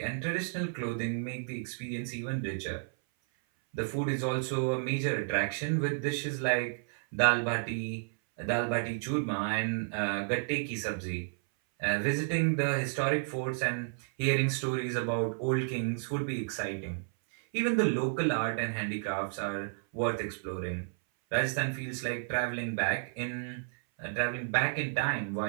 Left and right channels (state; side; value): silent; left; 57 dB below the other